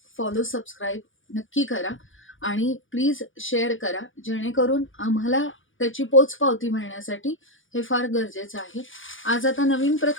फॉलो सबस्क्राईब नक्की करा आणि प्लीज शेअर करा, जेणेकरून आम्हाला त्याची पोचपावती मिळण्यासाठी हे फार गरजेचं आहे. आज आता नवीन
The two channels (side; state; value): right; late; 0.57 ms